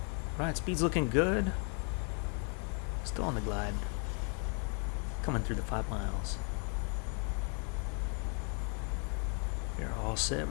Right, speed's looking good. Still on the glide. Coming through the 5 miles. We're all set.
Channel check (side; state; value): right; quieter; 38.6 dB